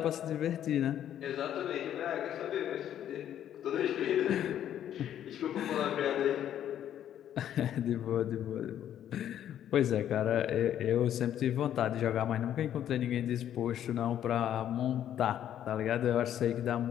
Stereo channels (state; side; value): quieter; right; 10.6 dB